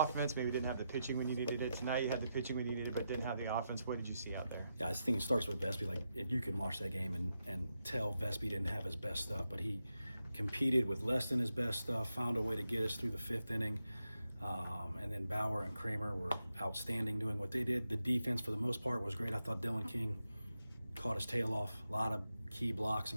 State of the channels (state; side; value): inverted; both; correlation -0.86